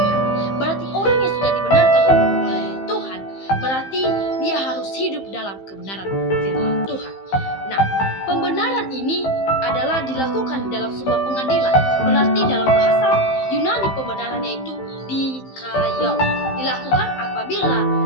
Berarti orang yang sudah dibenarkan oleh Tuhan, berarti dia harus hidup dalam kebenaran firman Tuhan. Nah, pembenaran ini adalah dilakukan dalam sebuah pengadilan. Berarti dalam bahasa Yunani pembenarannya itu dikayau. Dilakukan apabila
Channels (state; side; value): late; right; 15 ms